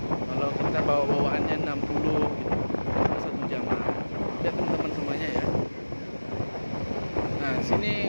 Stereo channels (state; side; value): inverted; both; correlation -1.00